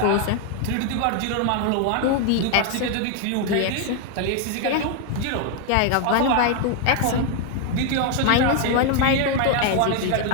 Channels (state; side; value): different; both; correlation 0.01